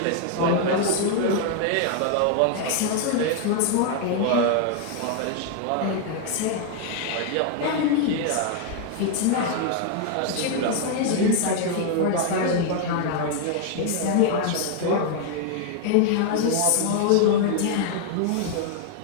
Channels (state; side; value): different; both; correlation 0.00